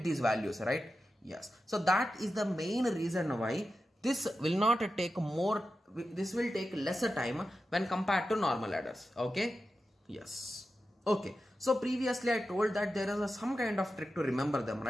these values, right? Yes. So that is the main reason why this will not take more, this will take lesser time when compared to normal adders. Okay. Yes. Okay. So previously I told that there is some kind of trick to remember them,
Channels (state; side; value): normal; both; correlation 0.91